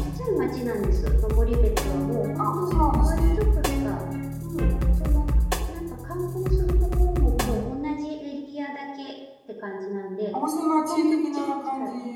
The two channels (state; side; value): identical; both; correlation 1.00